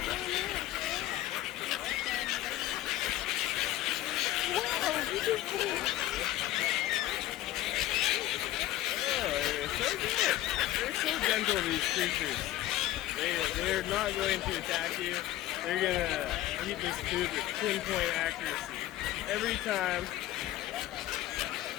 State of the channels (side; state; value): right; quieter; 14.6 dB